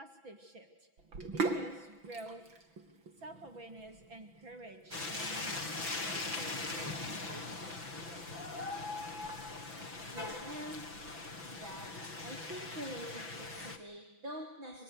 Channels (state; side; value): late; left; 6.0 ms